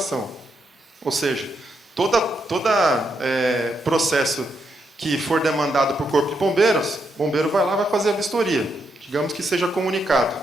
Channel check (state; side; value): normal; both; correlation 0.80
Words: Ou seja, todo processo que for demandado por Corpo de Bombeiros, o bombeiro vai lá e vai fazer a vistoria. Digamos que seja comunicado,